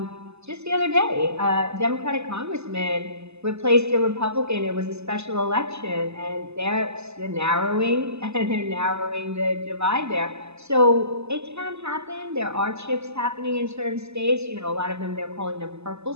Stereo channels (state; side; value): late; left; 0.80 ms